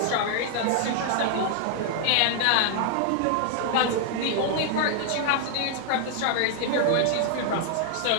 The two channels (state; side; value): different; both; correlation 0.00